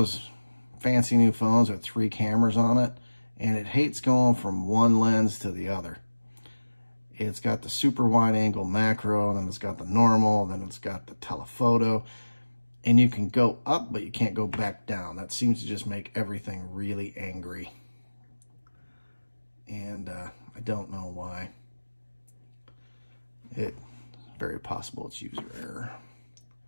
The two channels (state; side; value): inverted; both; correlation -1.00